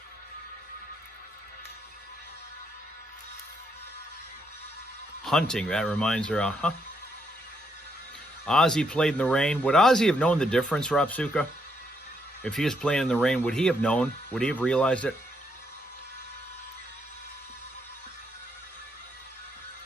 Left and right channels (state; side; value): normal; both; correlation 0.76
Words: Hunting, that reminds her, Ozzy played in the rain. Would Ozzy have known the difference, Rapsuka? If he was playing in the rain, would he have known? Would he have realized it?